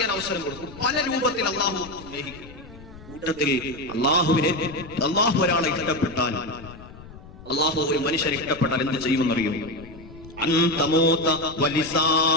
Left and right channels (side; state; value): left; noise; rumble, 18 dB below the sound